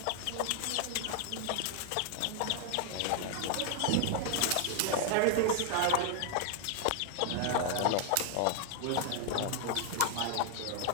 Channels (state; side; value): different; both; correlation 0.00